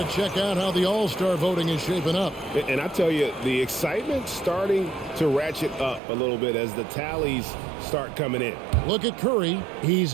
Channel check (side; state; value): left; drops out; at 6.0 s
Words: check out how the All-Star voting is shaping up. And I tell you, the excitement's starting to ratchet up a little bit as the tallies start coming in. Look at Curry. He's